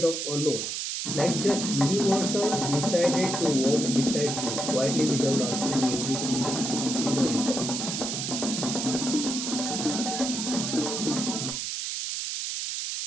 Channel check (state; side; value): noise; right; hiss, 3 dB below the sound